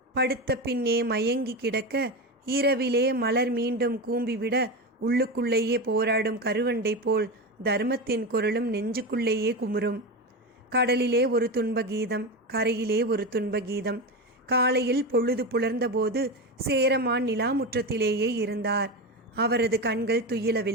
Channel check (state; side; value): normal; both; correlation 0.19